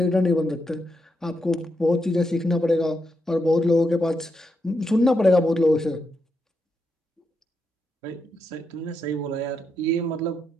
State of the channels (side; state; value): both; normal; correlation 0.83